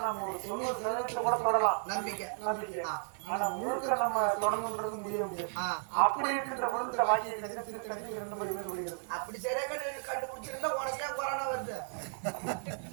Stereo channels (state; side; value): silent; left; 55 dB below the other